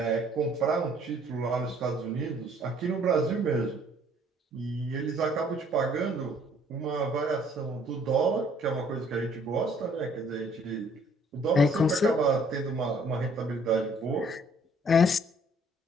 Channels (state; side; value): normal; both; correlation 0.60